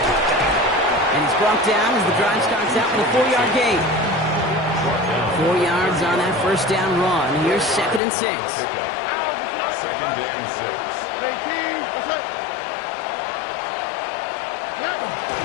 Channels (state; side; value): drops out; right; at 8.0 s